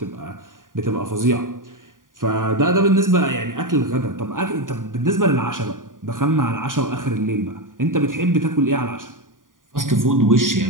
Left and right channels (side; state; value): left; late; 0.89 ms